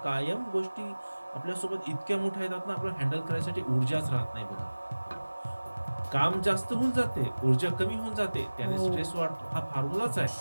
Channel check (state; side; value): inverted; both; correlation -1.00